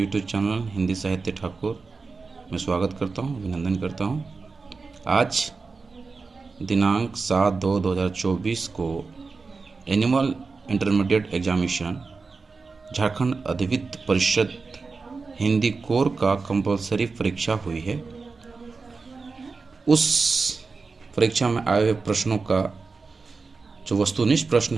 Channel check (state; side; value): quieter; left; 4.3 dB